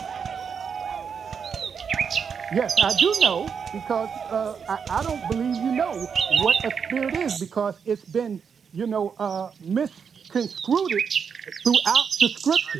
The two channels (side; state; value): left; quieter; 6.6 dB